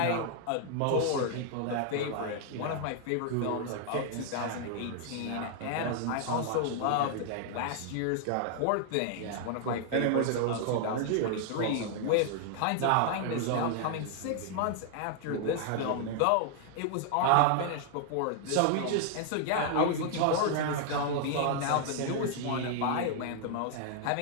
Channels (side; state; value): both; different; correlation 0.00